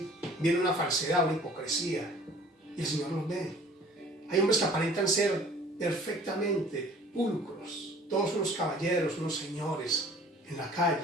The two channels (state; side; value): normal; both; correlation 0.50